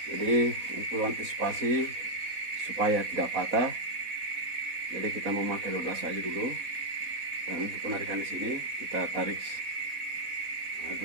Jadi untuk antisipasi supaya tidak patah, jadi kita memakai 12 saja dulu. Dan untuk penarikan di sini kita tarik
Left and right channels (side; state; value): left; late; 4.1 ms